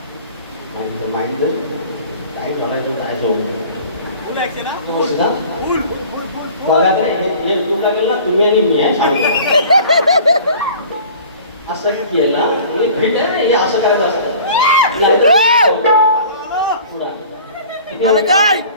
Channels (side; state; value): both; inverted; correlation -0.45